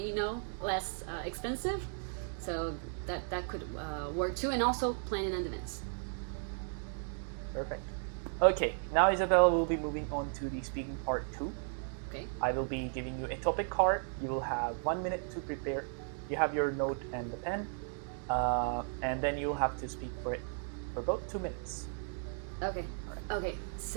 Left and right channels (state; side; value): silent; left; 54 dB below the other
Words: less expensive. So that could work too, and also plan in advance. Perfect. Okay, now Isabella will be moving on to the speaking part 2. Okay. I will be giving you a topic card. You will have 1 minute to prepare. You have your note and the pen, and then you'll have to speak for it for about 2 minutes. Okay. Okay,